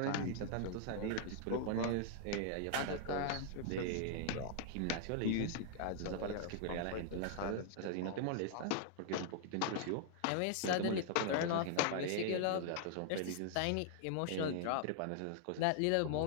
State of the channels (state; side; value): different; both; correlation 0.00